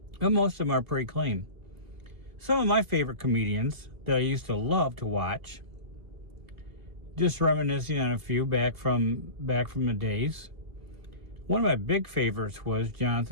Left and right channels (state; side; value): late; left; 2.0 ms